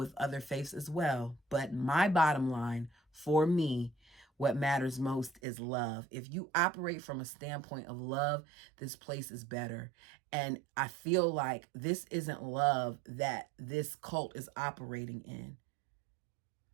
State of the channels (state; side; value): drops out; left; at 5.4 s